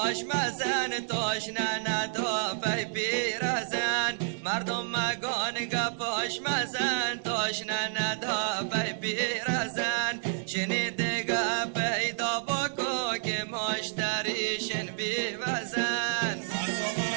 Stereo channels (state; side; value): silent; left; digital silence